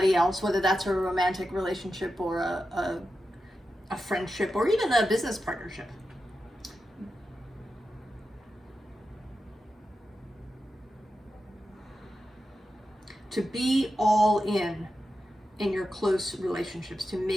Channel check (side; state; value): both; normal; correlation 0.90